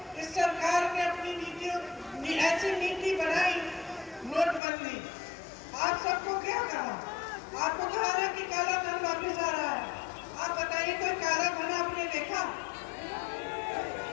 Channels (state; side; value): drops out; right; at 4.6 s